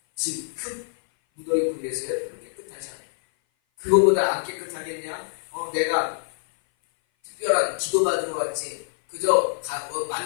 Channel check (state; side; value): silent; right; 57 dB below the other